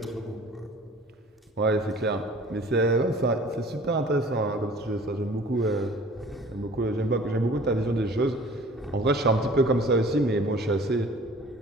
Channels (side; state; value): both; normal; correlation 0.48